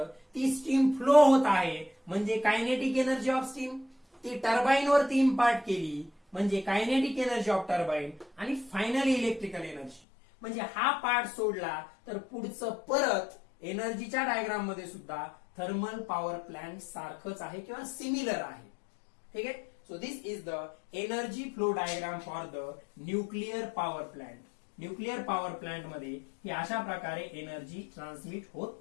ती स्टीम फ्लो होत आहे म्हणजे कायनेटिक एनर्जी ऑफ स्टीम. ती टर्बाईन वरती इम्पार्ट केली म्हणजे कायनेटिक एनर्जी ऑफ टर्बाईन आणि फायनली इलेक्ट्रिकल एनर्जी. म्हणजे हा पार्ट सोडला तर पुढचं परत एनर्जीच्या डायग्राम मध्ये सुद्धा थर्मल पॉवर प्लांट सारखंच आहे किंवा सिमिलर आहे. ठीक आहे. So this is the energy flow diagram for the nuclear power plant. Nuclear power plant मध्ये ही अशा प्रकारे एनर्जी ट्रान्समिट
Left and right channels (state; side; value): drops out; right; at 10.0 s